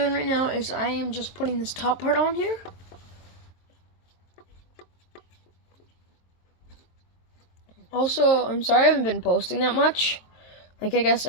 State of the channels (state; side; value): late; right; 23 ms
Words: right now is I am just putting this top part on here. Also, I'm sorry I haven't been posting that much. Like, I guess